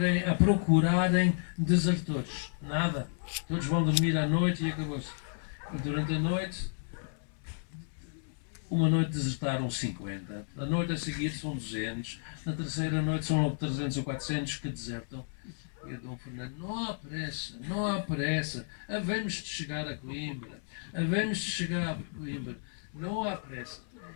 procurarem desertores. Nada. Todos vão dormir à noite e acabou-se. E durante a noite, uma noite desertaram 50, a noite a seguir são 200, na terceira noite são logo 300 ou 400 que desertam. E o Dom Fernando: não há pressa, havemos de chegar a Coimbra, não há pressa.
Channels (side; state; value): right; silent; 56 dB below the other